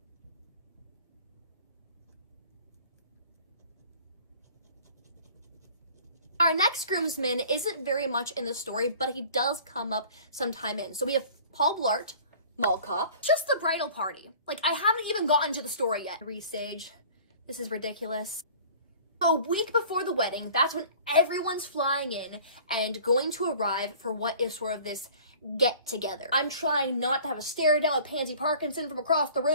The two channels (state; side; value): inverted; both; correlation -0.47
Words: Our next groomsman isn't very much in the story, but he does come up sometime in. So we have Paul Blart, Mall Cop, just the bridal party. Like, I haven't even gotten to the story yet. Resage. This is ridiculous. A week before the wedding, that's when everyone's flying in and going to arrive for what is sort of this get together. I'm trying not to have a stare down with Pansy Parkinson from across the